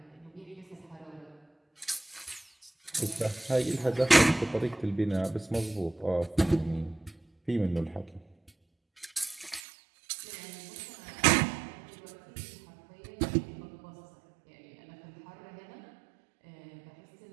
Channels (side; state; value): left; drops out; at 9.6 s